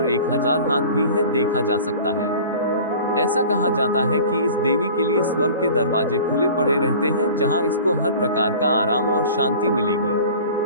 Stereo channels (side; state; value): both; inverted; correlation -0.42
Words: 1000 हाथ भी है, देखा जा सकता है। ऐसा कहा जाता है कि इस देवी के लिए स्वर्ग के दरवाजे खुले पड़े रहते हैं, जहां इसको हर प्रकार का आराम और शांति मिलेगी।